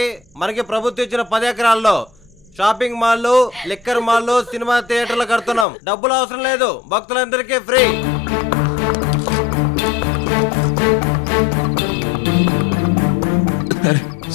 మనకి ప్రభుత్వం ఇచ్చిన 10 ఎకరాల్లో షాపింగ్ మాల్లు, లిక్కర్ మాల్లు, సినిమా థియేటర్లు కడుతున్నాం. డబ్బులు అవసరం లేదు, భక్తులందరికీ ఫ్రీ.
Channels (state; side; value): drops out; right; at 5.7 s